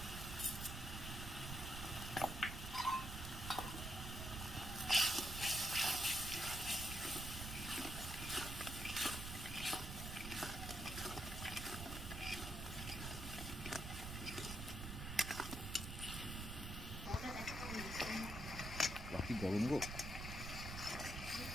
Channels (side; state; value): right; noise; rumble, 6 dB below the sound